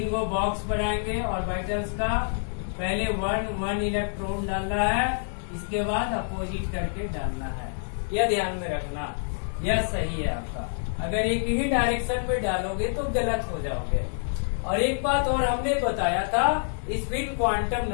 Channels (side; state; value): right; silent; digital silence